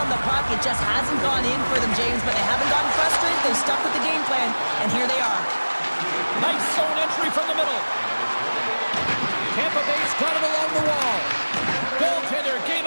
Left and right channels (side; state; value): both; inverted; correlation -1.00